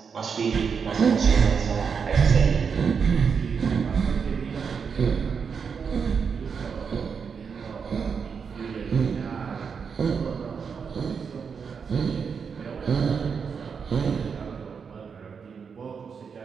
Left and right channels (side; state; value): left; quieter; 6.2 dB